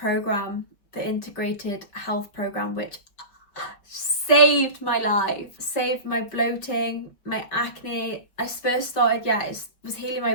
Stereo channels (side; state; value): right; late; 5.2 ms